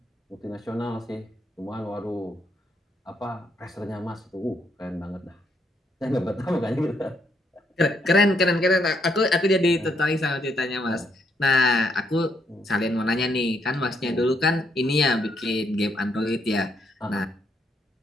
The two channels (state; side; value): normal; both; correlation 0.74